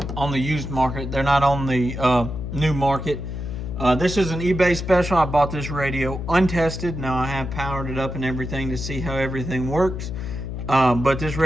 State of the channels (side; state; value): left; noise; hum, 6 dB below the sound